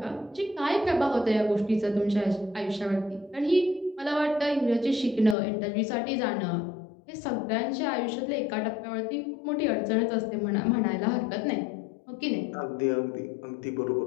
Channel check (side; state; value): right; drops out; at 5.4 s